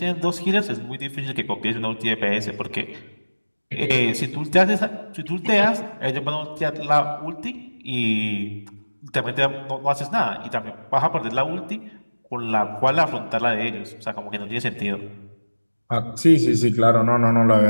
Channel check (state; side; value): inverted; both; correlation -1.00